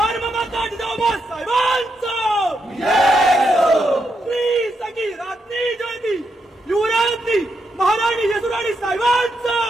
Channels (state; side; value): normal; both; correlation 0.82